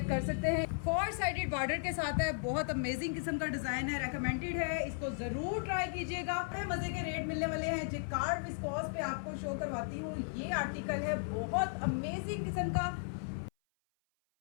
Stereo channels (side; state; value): right; silent; 54 dB below the other